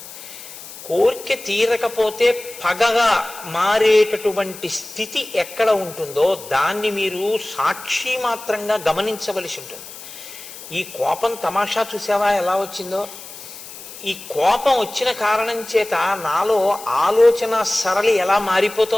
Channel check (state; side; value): noise; left; hiss, 15 dB below the sound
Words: కోరిక తీరకపోతే పగగా మారేటటువంటి స్థితి ఎక్కడ ఉంటుందో దాన్ని మీరు సాక్షి మాత్రంగా గమనించవలసి ఉంటుంది. ఈ కోపం తమాషా చూసావా ఎలా వచ్చిందో? ఈ కోపం వచ్చిన కారణం చేత నాలో ఆలోచన సరళి ఎలా